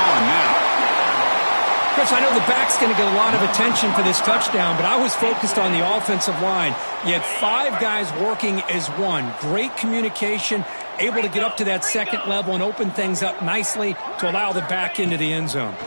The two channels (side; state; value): both; inverted; correlation -1.00